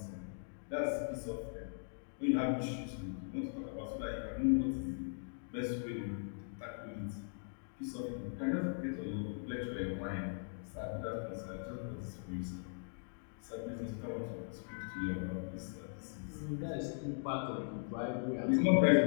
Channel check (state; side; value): silent; right; digital silence